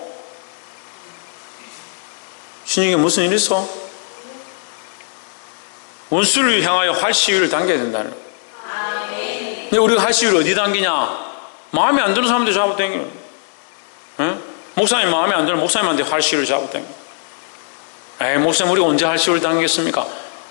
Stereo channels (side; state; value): right; silent; 67 dB below the other